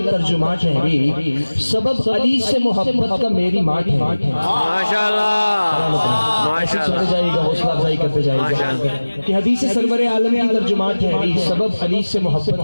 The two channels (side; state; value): both; inverted; correlation -1.00